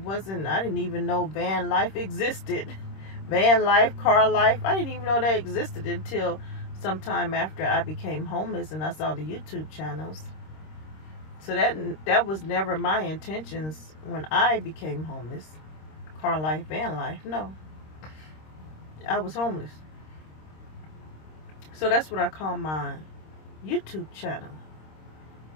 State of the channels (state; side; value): late; right; 26 ms